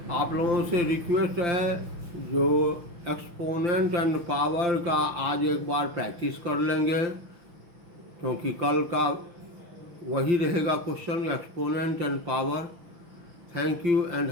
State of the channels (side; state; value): left; late; 5.8 ms